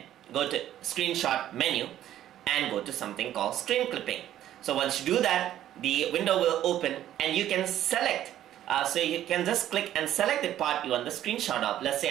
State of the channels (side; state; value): left; quieter; 12.1 dB